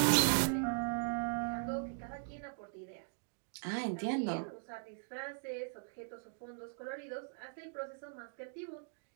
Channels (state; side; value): silent; left; digital silence